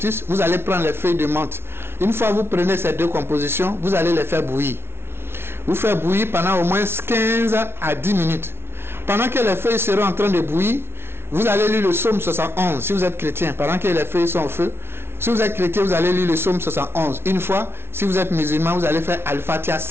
Vous allez prendre les feuilles de menthe. Une fois que vous prenez ces deux compositions, vous allez les faire bouillir. Vous faites bouillir pendant au moins 15 à 10 minutes. Pendant que les feuilles seront en train de bouillir, vous allez lire le psaume 71 si vous êtes chrétien, pendant que les feuilles sont au feu. Si vous êtes chrétien, vous allez lire le psaume 71 une fois. Si vous êtes musulman, vous allez faire Al-Fatiha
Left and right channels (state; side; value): late; left; 0.12 ms